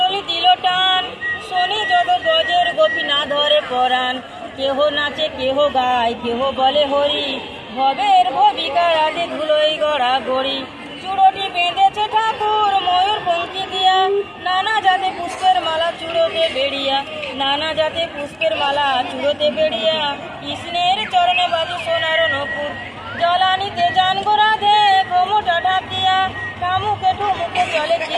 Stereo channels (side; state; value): both; identical; correlation 1.00